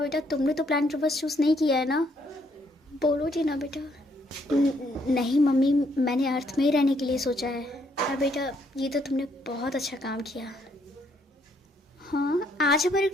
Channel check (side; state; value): both; normal; correlation 0.70